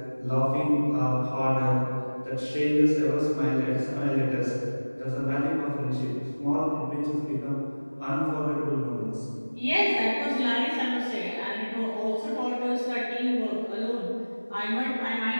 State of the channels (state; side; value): inverted; both; correlation -1.00